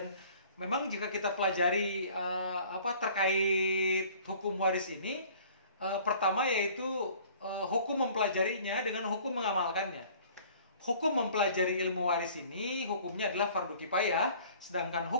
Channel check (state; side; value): inverted; both; correlation -0.51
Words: memang jika kita pelajari terkait hukum waris ini, pertama yaitu hukum mempelajarinya dengan hukum mengamalkannya. Hukum mempelajari ilmu waris ini hukumnya adalah fardu kifayah, sedangkan